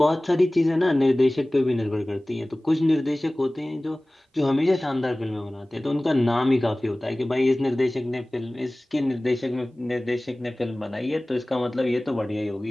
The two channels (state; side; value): normal; both; correlation 0.98